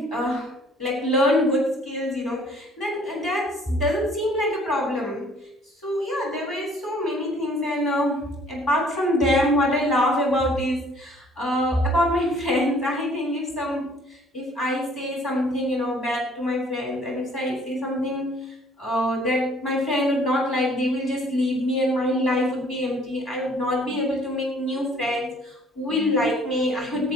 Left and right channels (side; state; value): both; normal; correlation 0.57